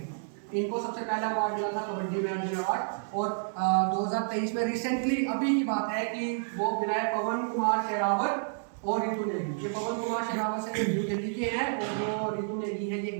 इनको सबसे पहला अवार्ड मिला था कबड्डी में, अर्जुन अवार्ड। और 2023 में रिसेंटली अभी की बात है कि वो मिला है पवन कुमार शेरावत और रितु नेगी। ये पवन कुमार शेरावत से न्यू दिल्ली के हैं, और जो रितु नेगी है ये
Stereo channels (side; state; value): left; silent; digital silence